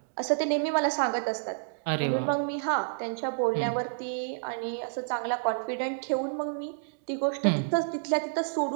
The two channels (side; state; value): left; silent; digital silence